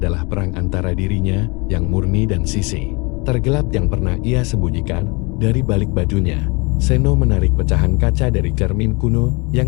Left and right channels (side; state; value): right; quieter; 28.3 dB